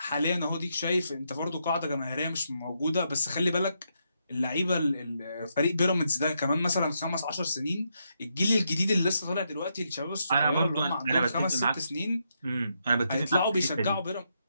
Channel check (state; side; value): inverted; both; correlation -0.80